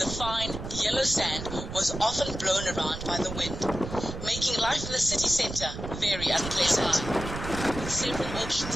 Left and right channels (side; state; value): right; noise; rumble, 8 dB below the sound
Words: fine, yellow sand was often blown around by the wind, making life in the city centre very unpleasant. With several